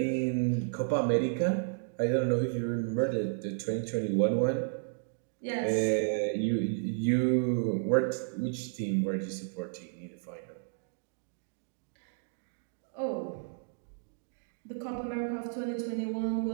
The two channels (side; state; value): left; silent; digital silence